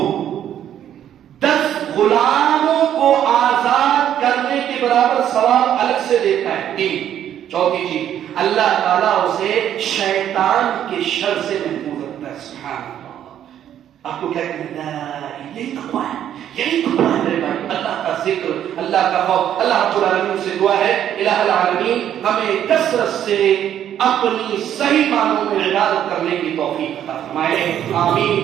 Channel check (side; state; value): left; quieter; 10.4 dB